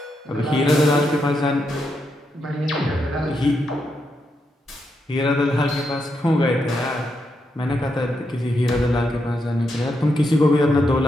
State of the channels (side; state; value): both; normal; correlation 0.82